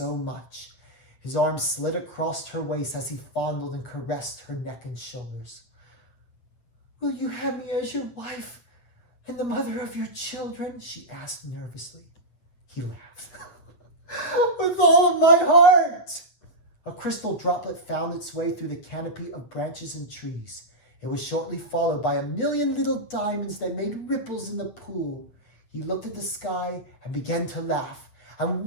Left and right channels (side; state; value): right; late; 8.5 ms